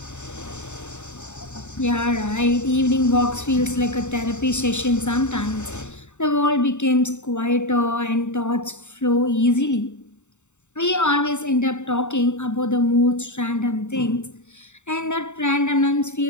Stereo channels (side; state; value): right; late; 0.84 ms